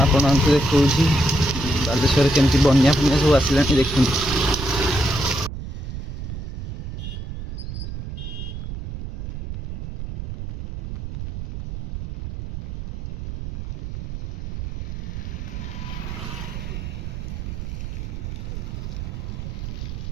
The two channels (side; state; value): right; noise; rumble, 7 dB below the sound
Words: ଆପଣଙ୍କୁ ଦେଖାଉଛି ବାଲେଶ୍ୱରରେ କେମିତି ବନ୍ୟା ଫନ୍ୟା ସବୁ ଆସିଲାଣି ଦେଖନ୍ତୁ।